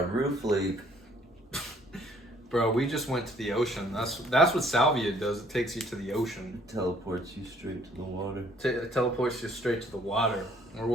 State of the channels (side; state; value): both; normal; correlation 0.61